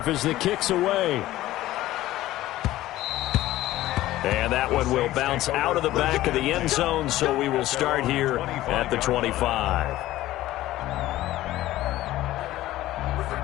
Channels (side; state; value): right; quieter; 15.5 dB